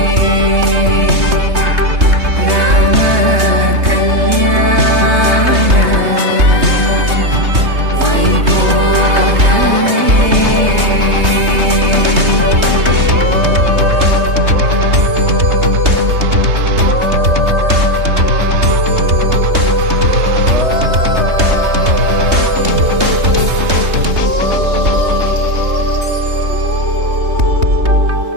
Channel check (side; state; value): left; late; 3.2 ms